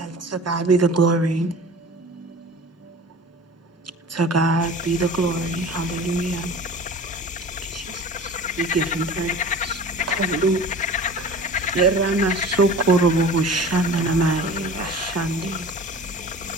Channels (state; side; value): normal; both; correlation 0.39